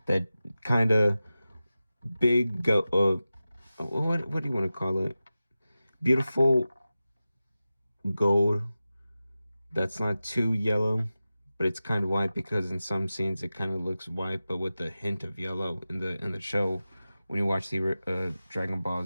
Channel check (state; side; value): inverted; both; correlation -0.94